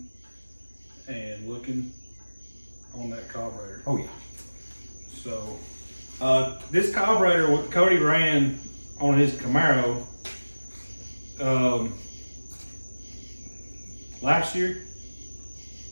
and looking on that carburetor. Oh yeah. So this carburetor what Cody ran on his Camaro last year,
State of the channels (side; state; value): both; inverted; correlation -1.00